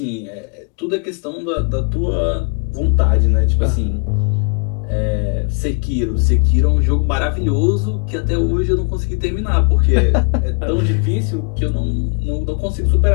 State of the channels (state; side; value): quieter; right; 38.2 dB